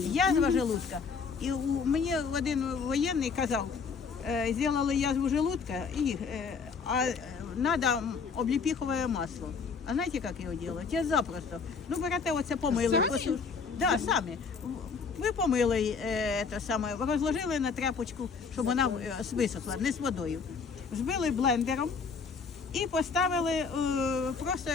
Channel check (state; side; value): quieter; right; 5.3 dB